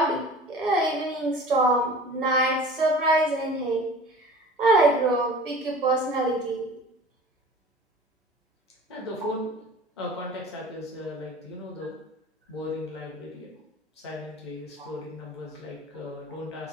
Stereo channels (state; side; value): normal; both; correlation 0.42